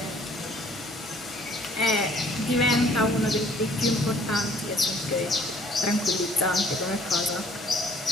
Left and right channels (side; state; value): both; normal; correlation 0.57